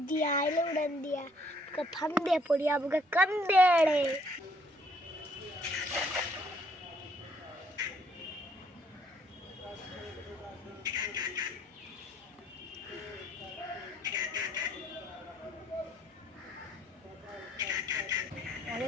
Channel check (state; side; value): normal; both; correlation 0.65